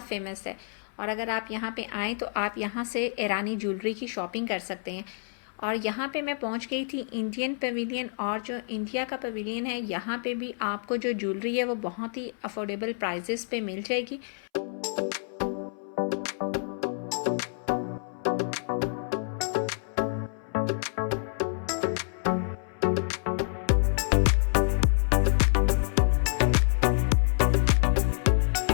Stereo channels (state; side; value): silent; right; 59 dB below the other